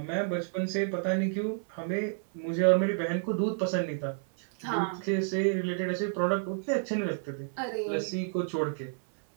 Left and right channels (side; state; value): left; silent; 58 dB below the other